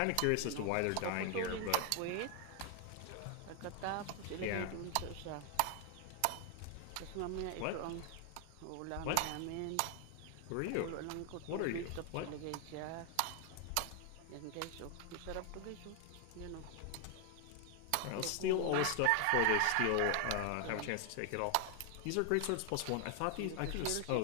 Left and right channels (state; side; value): different; both; correlation 0.00